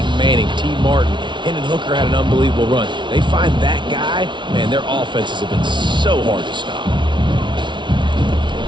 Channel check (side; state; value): left; late; 0.23 ms